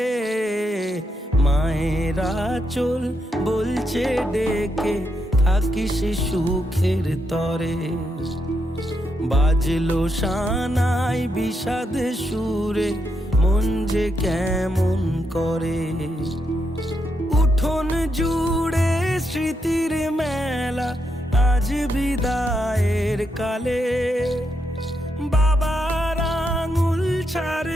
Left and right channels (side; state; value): both; normal; correlation 0.82